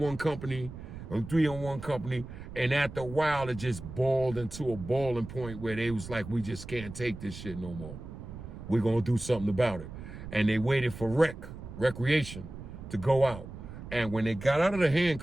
company or 3 on one company. And after a while, it just boiled into a boiling point where they was like, we just can't take this shit no more. We're going to do something about it. And they waited for recreation to go out. And when they got out of the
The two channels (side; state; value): right; noise; rumble, 12 dB below the sound